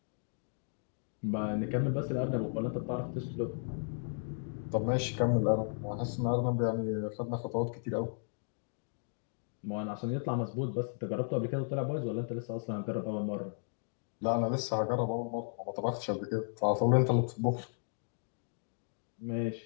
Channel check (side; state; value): right; silent; digital silence